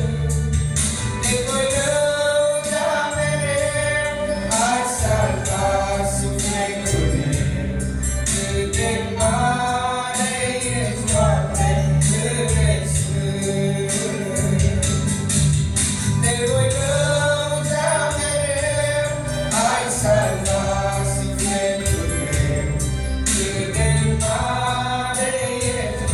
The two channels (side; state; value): both; identical; correlation 1.00